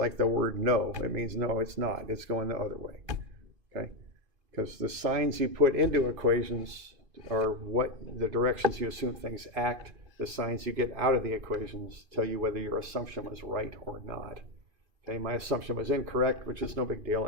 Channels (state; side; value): late; left; 2.5 ms